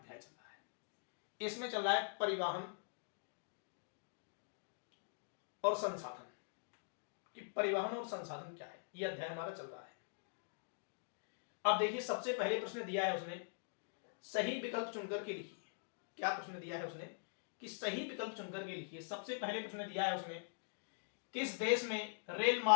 चल रहा है। इसमें चल रहा है परिवहन और संसाधन, कि परिवहन और संसाधन क्या है, यह अध्याय हमारा चल रहा है। अब देखिए, सबसे पहले प्रश्न दिया है उसने सही विकल्प चुनकर के लिखिए। क्या प्रश्न दिया है उसने कि सही विकल्प चुनकर के लिखिए। सबसे पहले प्रश्न दिया है उसने किस देश में रेल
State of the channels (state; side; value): silent; right; digital silence